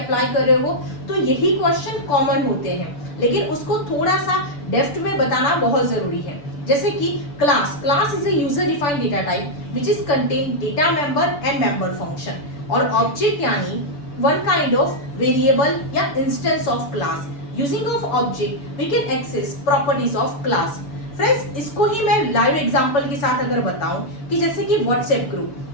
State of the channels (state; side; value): late; right; 6.9 ms